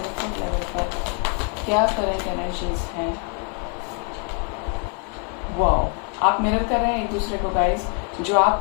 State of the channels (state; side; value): quieter; right; 35.0 dB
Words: लेवल पर क्या करंट एनर्जीज हैं। वाओ, आप मिरर कर रहे हैं एक दूसरे को गाइस। जो आप